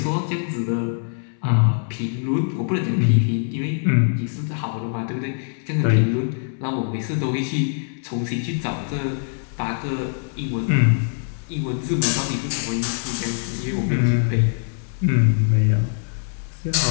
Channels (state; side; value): silent; right; digital silence